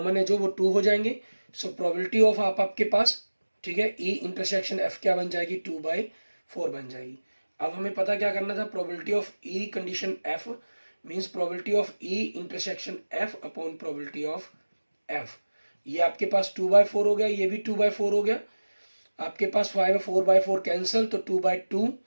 है जो, वो 2 हो जाएंगे। सो प्रोबेबिलिटी ऑफ आपके पास, ठीक है, ई इंटरसेक्शन एफ क्या बन जाएगी, 2/4 बन जाएगी। अब हमें पता क्या करना था, probability of E condition F means probability of E intersection F upon probability of F. ये आपके पास 2/4 हो गया, ये भी 2/4 हो गया, आपके पास 4/4 कैंसिल, तो 2/2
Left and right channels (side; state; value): both; inverted; correlation -1.00